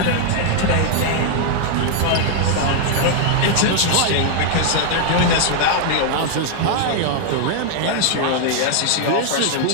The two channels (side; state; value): both; different; correlation 0.00